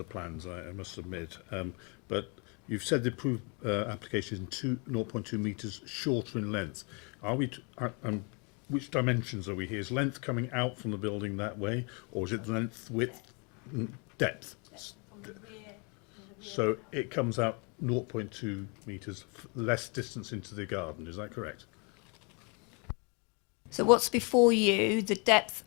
plans, I must admit, but you've said the approved application is 0.2 metres shorter in length. Are we? Which dimensions are we here? Is length coming out from the building that way, or is it length, width, depth? So it comes out 0.2 metres less distance into the garden. Is that correct? So what's before you, the depth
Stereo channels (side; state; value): right; quieter; 33.2 dB